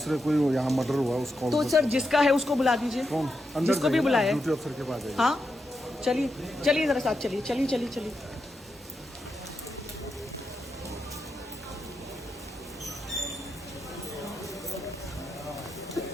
कोई यहाँ मर्डर हुआ उसको तो सर जिसका है उसको बुला दीजिए। कौन? अंदर जिसको भी बुलाया। ड्यूटी अफसर के पास। हाँ चलिए जरा साथ चलिए।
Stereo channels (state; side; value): normal; both; correlation 0.86